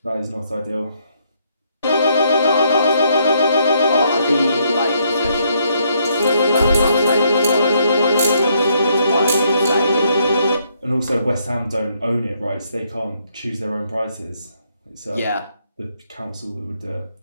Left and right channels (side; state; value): both; inverted; correlation -0.72